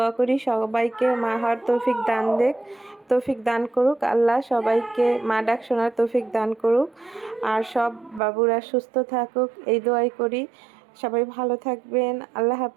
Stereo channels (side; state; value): left; drops out; at 8.2 s